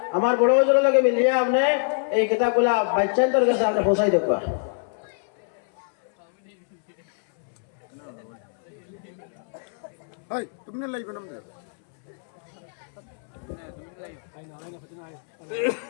আমার বড় বড় লাগে মিলিয়ে আপনি এই কিতাবগুলা বাচ্চাদের কাছে আপনি পৌঁছাই দেখবা।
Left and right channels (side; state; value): right; silent; 62 dB below the other